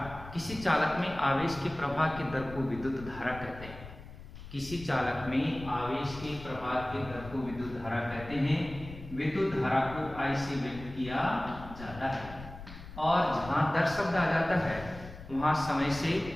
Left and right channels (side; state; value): left; noise; rumble, 14 dB below the sound